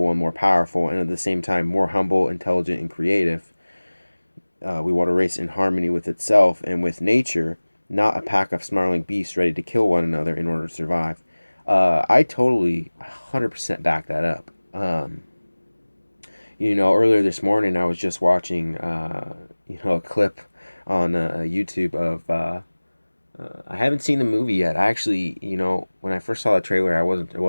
and more powerful, and at the same time more humble, intelligent, and creative. We want a race in harmony with itself and with nature, not a pack of snarling beasts ready to kill one another in order to survive. I totally 100% back that up. Earlier this morning I was just watching, a clip on YouTube of. I haven't seen the movie yet. I actually, when I first saw the trailer, I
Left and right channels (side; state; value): both; inverted; correlation -1.00